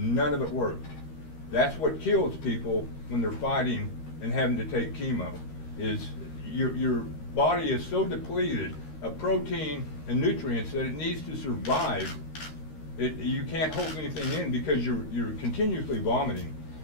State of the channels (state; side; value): late; right; 13 ms